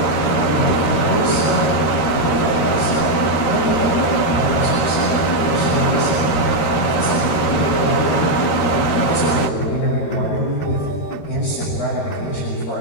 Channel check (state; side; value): late; right; 13 ms